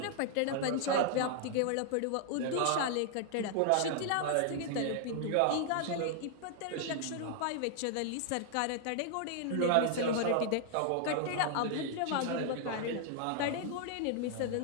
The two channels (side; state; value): both; different; correlation 0.00